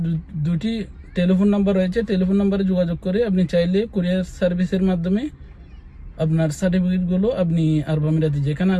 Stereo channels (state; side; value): identical; both; correlation 1.00